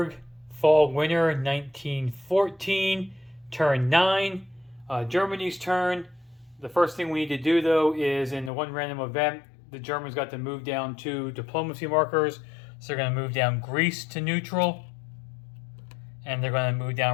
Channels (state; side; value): drops out; right; at 8.5 s